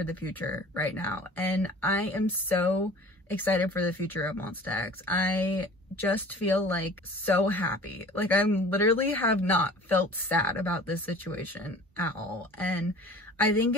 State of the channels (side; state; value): both; normal; correlation 0.44